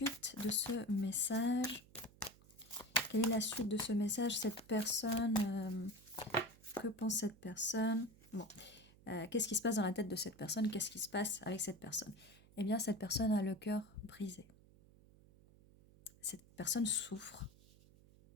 de ce message? Quelle est la suite de ce message? Cette personne, que pense cette personne? Bon, qu'est-ce qui se passe dans la tête de cette personne? Qu'est-ce qui se passe avec cette personne? Eh bien, cette personne a le cœur brisé. Cette personne souffre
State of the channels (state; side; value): noise; right; hum, 25 dB below the sound